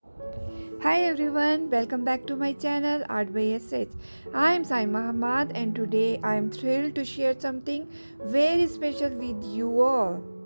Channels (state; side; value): inverted; both; correlation -1.00